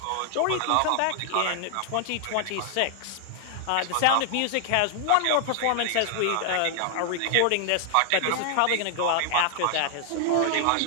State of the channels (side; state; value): both; different; correlation 0.00